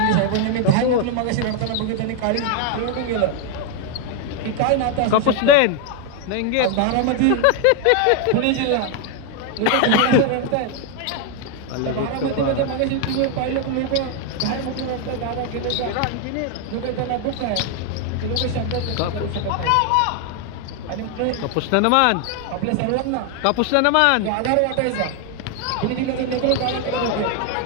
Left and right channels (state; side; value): different; both; correlation 0.00